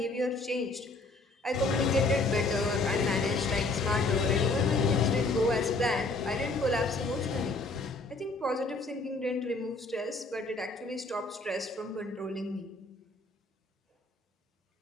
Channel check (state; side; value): quieter; right; 3.2 dB